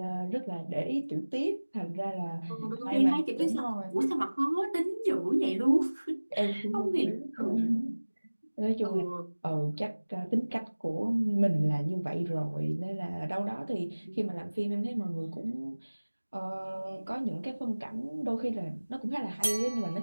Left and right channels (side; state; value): both; inverted; correlation -1.00